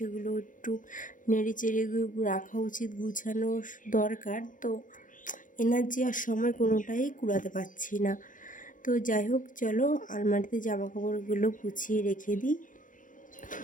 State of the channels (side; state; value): right; late; 0.38 ms